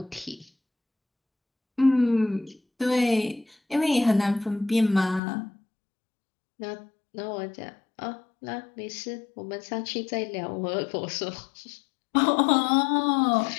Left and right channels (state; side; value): drops out; right; at 5.2 s